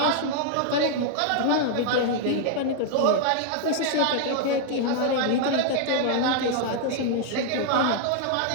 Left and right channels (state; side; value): different; both; correlation -0.01